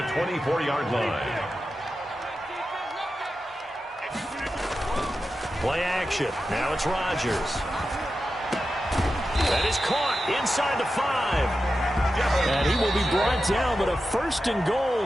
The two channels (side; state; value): both; normal; correlation 0.91